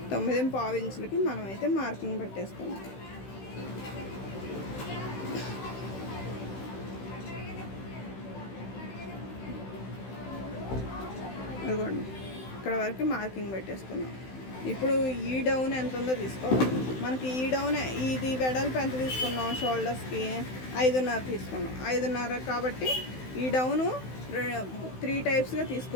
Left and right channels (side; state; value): right; late; 16 ms